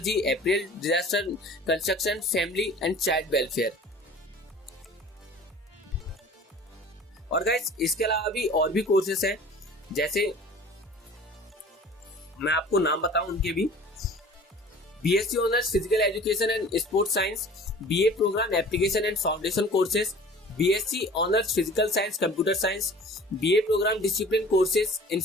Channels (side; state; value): both; normal; correlation 0.45